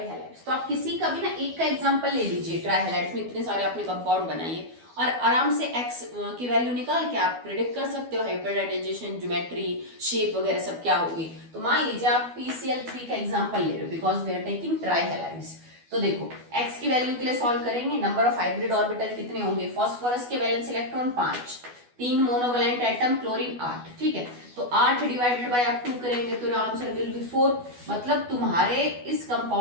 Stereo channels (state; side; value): late; left; 12 ms